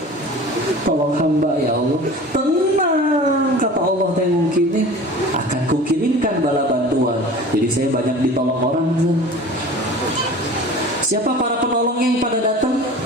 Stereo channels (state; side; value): normal; both; correlation 0.40